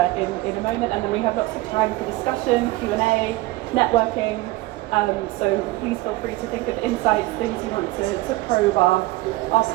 in a moment. And then we have lots of time for discussion, Q&A, networking. So please feel free to think of insights, things you want to probe our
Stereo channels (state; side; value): quieter; left; 19.2 dB